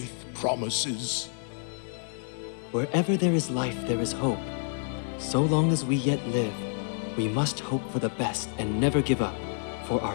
promises. Wherever there is life, there is hope. So long as we yet live, we must hope for the best and never give up. For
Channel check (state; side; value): silent; right; digital silence